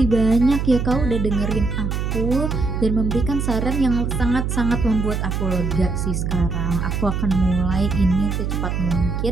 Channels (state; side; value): noise; right; hum, 2 dB below the sound